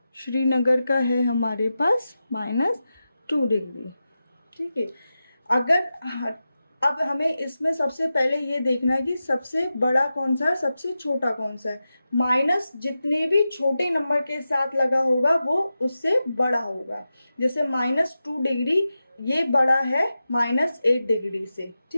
श्रीनगर का है हमारे पास -2 डिग्री. ठीक है. अगर अब हमें इसमें सबसे पहले ये देखना है कि सबसे बड़ा कौन सा है, सबसे छोटा कौन सा है. माइनस जितने भी छोटे नंबर के साथ लगा होगा वो उससे बड़ा होगा. जैसे -2 डिग्री ये बड़ा है -8 डिग्री से.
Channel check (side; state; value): both; inverted; correlation -0.92